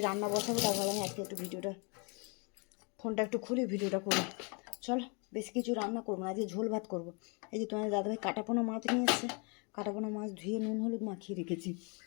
রান্না বসাবো, তাও ভাবলাম আজকে একটু ভিডিওটা, ফোনটা একটু খুলি ভিডিওটা করবো। চলো, বেশি কিছু রান্না করবো না, আজকে ঝোল ভাত করবো। এই যে তোমাদের দাদাভাই কাটাপোনা মাছ নিয়ে এসছে, কাটাপোনা মাছ ধুয়ে নুন হলুদ মাখিয়ে রেখেছি।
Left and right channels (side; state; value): right; quieter; 33.7 dB